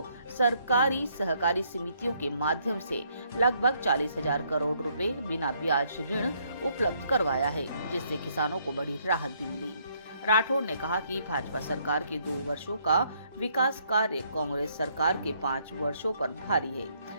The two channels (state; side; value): inverted; both; correlation -0.69